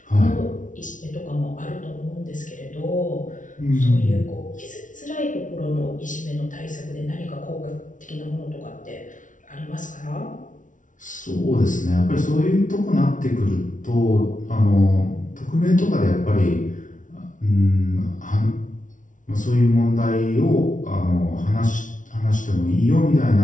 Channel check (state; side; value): late; right; 0.37 ms